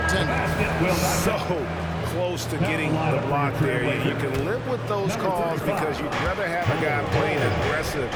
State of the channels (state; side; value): identical; both; correlation 1.00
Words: So close to getting the block there. You can live with those calls because you'd rather have a guy playing aggressive